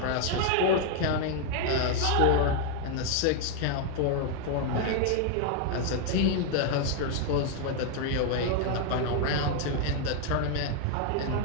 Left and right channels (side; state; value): both; different; correlation 0.01